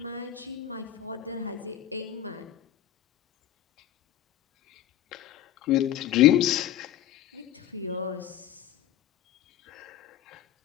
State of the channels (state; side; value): quieter; right; 11.5 dB